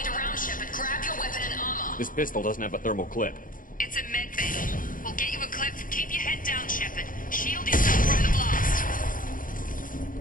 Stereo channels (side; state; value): right; late; 0.40 ms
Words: around, Shepard. Grab your weapon and armor. This pistol doesn't have a thermal clip. It's a med bay. We'll get you a clip. Keep your head down, Shepard. Shield yourself from the blast.